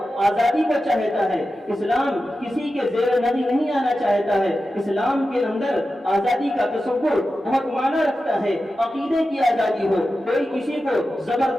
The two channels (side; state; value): both; normal; correlation 0.92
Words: آزادی کو چاہتا ہے، اسلام کسی کے زیر نظر نہیں آنا چاہتا ہے، اسلام کے اندر آزادی کا تصور بہت معنی رکھتا ہے۔ عقیدے کی آزادی ہو، کوئی کسی کو